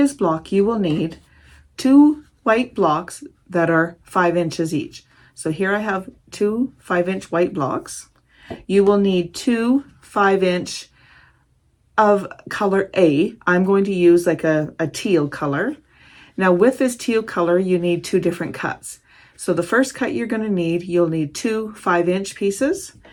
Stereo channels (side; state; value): both; identical; correlation 1.00